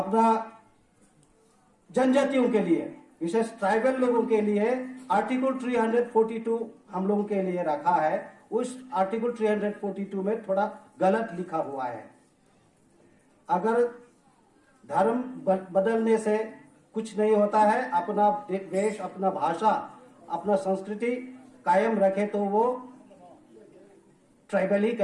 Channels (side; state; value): both; identical; correlation 1.00